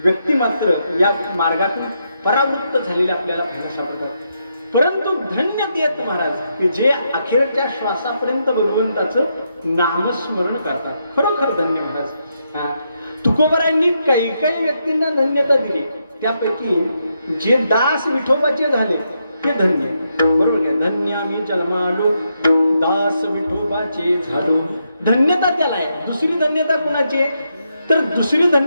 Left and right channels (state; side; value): inverted; both; correlation -0.81